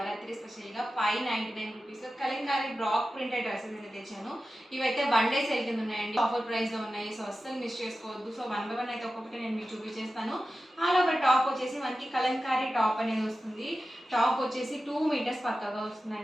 స్పెషల్గా 599 రూపీస్లో కలంకారీ బ్రాక్ ప్రింటెడ్ డ్రెస్సెస్ అయితే తెచ్చాను. ఇవైతే వన్ డే సేల్ కింద ఉన్నాయండి, ఆఫర్ ప్రైస్లో ఉన్నాయి. సో అస్సలు మిస్ చేసుకోవద్దు. సో వన్ బై వన్ అయితే ఒక్కొక్కటి నేను మీకు చూపించేస్తాను. ఆల్ ఓవర్ టాప్ వచ్చేసి మనకి కలంకారీ టాప్ అనేది వస్తుంది. టాప్ వచ్చేసి 2 మీటర్స్ పక్కగా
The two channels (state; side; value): normal; both; correlation 0.93